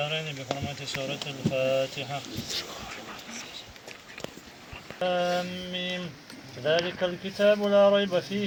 بحرمة سورة الفاتحة. آمين. ذلك الكتاب لا ريب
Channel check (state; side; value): identical; both; correlation 1.00